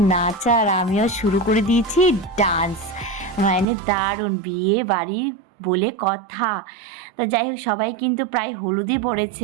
নাচা, আর আমিও শুরু করে দিয়েছি ডান্স। মানে দারুণ, বিয়ে বাড়ি বলে কথা। তো যাই হোক, সবাই কিন্তু প্রায় হলুদই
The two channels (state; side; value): drops out; left; at 3.7 s